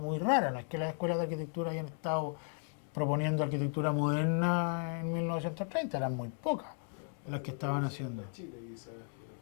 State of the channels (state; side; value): silent; right; 54 dB below the other